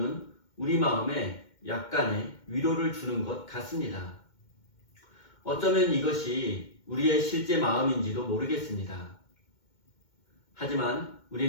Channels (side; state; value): right; late; 2.2 ms